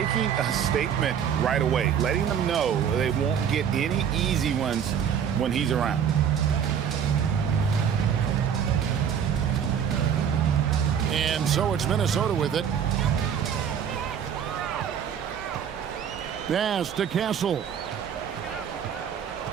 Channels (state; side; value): quieter; left; 8.2 dB